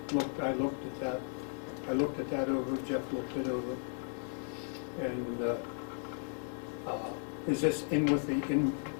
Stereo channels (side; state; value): right; silent; 54 dB below the other